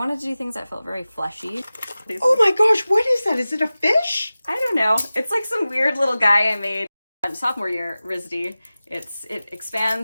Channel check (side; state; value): both; inverted; correlation -0.96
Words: to do things that felt very fleshy. Oh my gosh, what is that? Is it a fish? I don't know. It's like some weird little guy I made sophomore year RISD. It